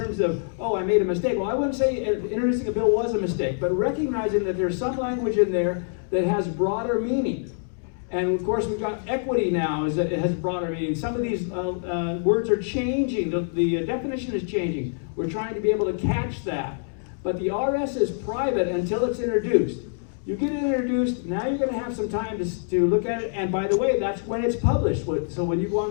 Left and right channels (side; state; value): right; silent; digital silence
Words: of, oh, I made a mistake. Well, I wouldn't say introducing a bill was a mistake, but recognizing that there's some language in there that has broader meaning. And of course, we've got equity now, it has broader meaning. Some of these words are changing, the definition is changing. We're trying to be able to catch that. But the RS is private until it's introduced. You get it introduced, now you're going to have some time to look at it, and by the way, that's when it's published. So when you go